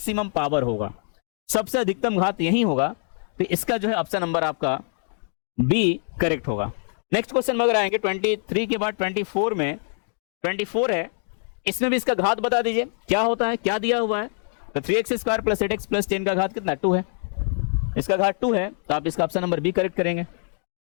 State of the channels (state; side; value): silent; right; digital silence